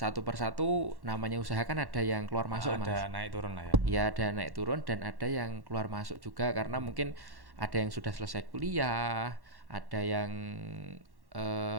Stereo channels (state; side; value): late; left; 1.1 ms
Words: persatu namanya usaha kan ada yang keluar masuk Mas. Ada naik turun lah ya. Ya ada naik turun dan ada yang keluar masuk juga karena mungkin ada yang sudah selesai kuliah, ada yang